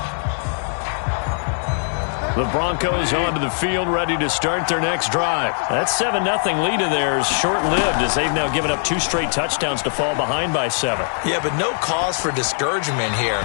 The Broncos onto the field, ready to start their next drive. That 7-0 lead of theirs short-lived as they've now given up 2 straight touchdowns to fall behind by 7. Yeah, but no cause for discouragement here.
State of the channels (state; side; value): silent; right; digital silence